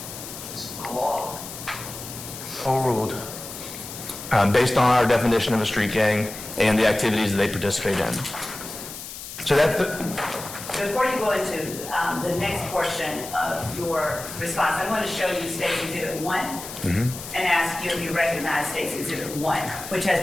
Overruled. Based on our definition of a street gang and the activities that they participate in. So that's Before you go into the next portion of your response, I want to show you State's Exhibit 1 and ask you if you recognize State's Exhibit 1, which has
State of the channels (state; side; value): noise; left; hiss, 11 dB below the sound